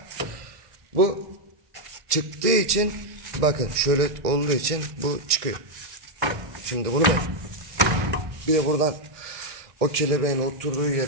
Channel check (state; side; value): late; left; 1.9 ms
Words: Bu çıktığı için bakın şöyle olduğu için bu çıkıyor. Şimdi bunu bir de buradan o kelebeğin oturduğu